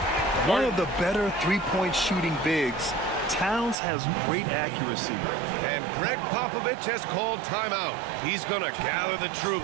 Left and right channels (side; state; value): left; drops out; at 3.8 s